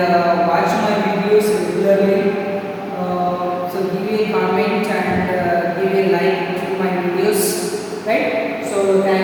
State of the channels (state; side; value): identical; both; correlation 1.00